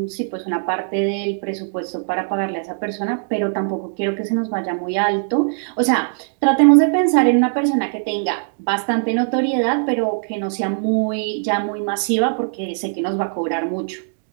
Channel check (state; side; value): silent; left; digital silence